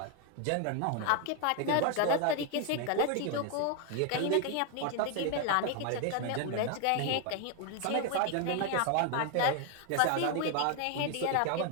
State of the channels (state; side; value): different; both; correlation 0.01